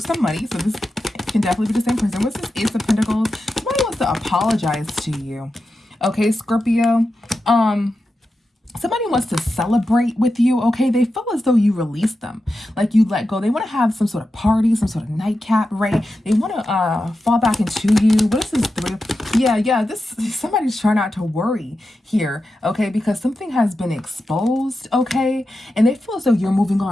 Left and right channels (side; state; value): both; normal; correlation 0.90